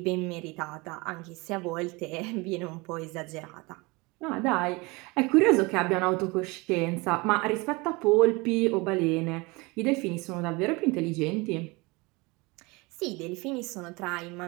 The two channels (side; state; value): left; quieter; 25.4 dB